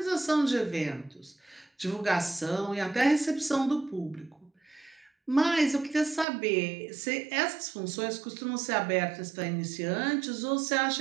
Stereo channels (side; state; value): left; drops out; at 6.2 s